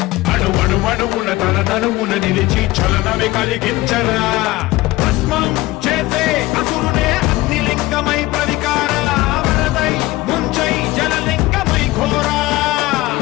అణువణువున తన తనువున నిలిచి చలనమే కలిగించరా భస్మం చేసే అసురునే అగ్నిలింగమై ప్రవికార వరదై ముంచై జలలింగమై ఘోరా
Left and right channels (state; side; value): quieter; right; 18.9 dB